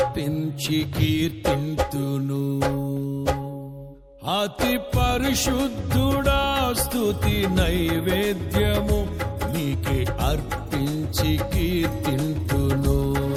కీర్తింతును. అతి పరిశుద్ధుడా స్తుతి నైవేద్యము నీకే అర్పించి కీర్తింతును.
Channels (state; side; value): identical; both; correlation 1.00